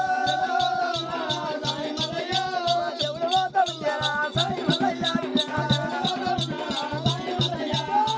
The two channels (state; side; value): identical; both; correlation 1.00